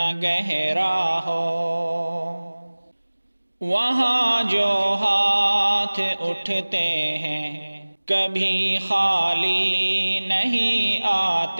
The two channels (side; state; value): both; inverted; correlation -1.00